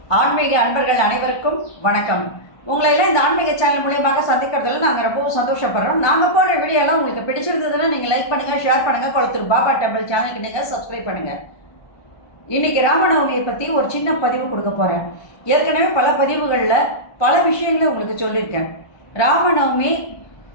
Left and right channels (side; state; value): right; late; 1.2 ms